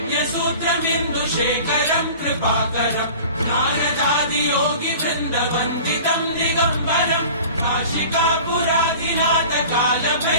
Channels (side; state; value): both; inverted; correlation -0.41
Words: कृपाकरम् नारदादियोगि वृन्दवन्दितम् दिगम्बरम् काशिकापुराधिनाथ